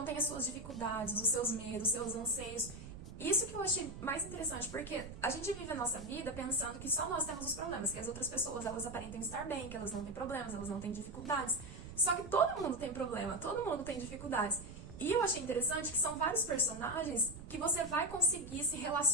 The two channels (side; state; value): right; noise; rumble, 13 dB below the sound